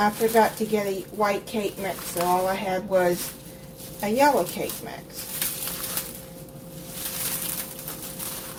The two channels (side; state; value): both; identical; correlation 1.00